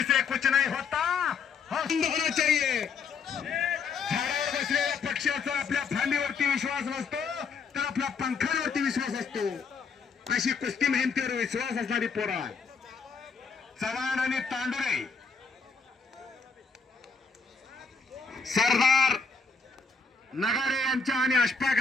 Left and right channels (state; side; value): quieter; right; 5.1 dB